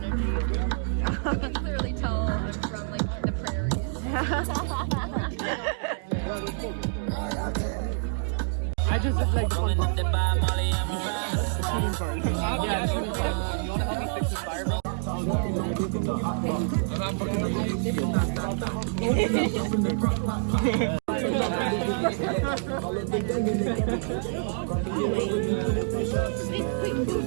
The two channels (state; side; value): silent; left; digital silence